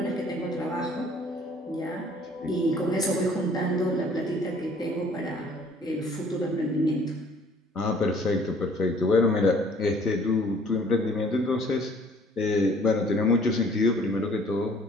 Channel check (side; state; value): both; normal; correlation 0.56